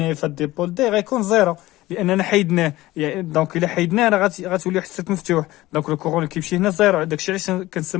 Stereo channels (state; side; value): quieter; right; 17.6 dB